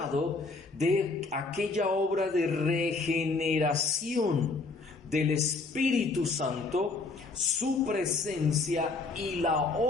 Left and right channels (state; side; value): quieter; right; 3.8 dB